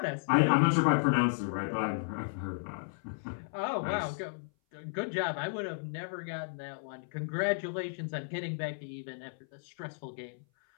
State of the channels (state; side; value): silent; right; 55 dB below the other